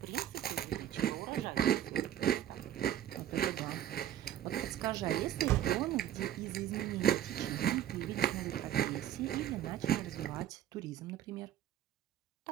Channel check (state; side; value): quieter; left; 11.5 dB